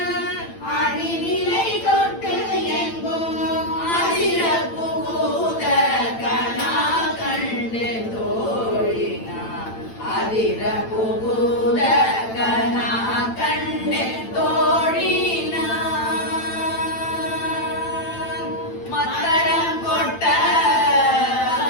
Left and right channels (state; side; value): late; right; 8.9 ms